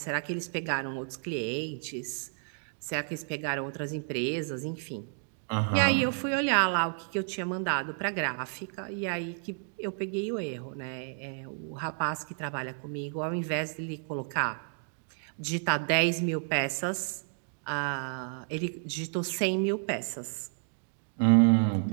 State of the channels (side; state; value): left; silent; 57 dB below the other